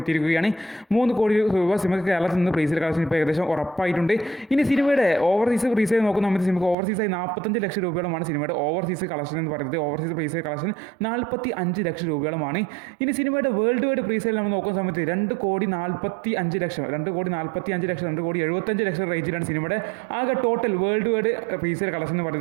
എത്തിയിരിക്കുകയാണ്. 3 കോടി രൂപ സിനിമയ്ക്ക് കേരളത്തിൽ നിന്ന് പ്രീസിലെ കളക്ഷൻ ഇപ്പോൾ ഏകദേശം ഉറപ്പായിട്ടുണ്ട്. ഇനി സിനിമയുടെ ഓവർസീസ് പ്രീസിൽ നോക്കുന്ന സമയത്ത് സിനിമയ്ക്ക് ഓവർസീസായി 45 ലക്ഷം രൂപയോളമാണ് സിനിമയുടെ ഓവർസീസ് കളക്ഷൻ എന്ന് പറയുന്നത്. ഓവർസീസ് പ്രീസിലെ കളക്ഷൻ 45 ലക്ഷം രൂപയോളമാണ്. ഇനി സിനിമയുടെ വേൾഡ് വൈഡ് പ്രീസിൽ നമ്മൾ നോക്കുന്ന സമയത്ത് 2,45,00,000 2,75,00,000 റേഞ്ചിലാണ് സിനിമയുടെ ആകെ ടോട്ടൽ വേൾഡ് വൈഡ് പ്രീസിലെ കളക്ഷൻ എന്ന്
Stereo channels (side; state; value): left; drops out; at 6.8 s